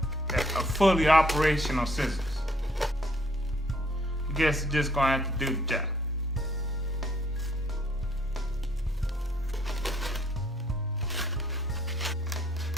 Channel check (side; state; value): both; normal; correlation 0.65